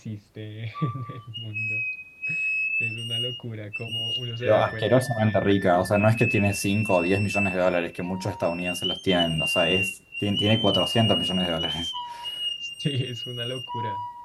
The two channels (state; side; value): identical; both; correlation 1.00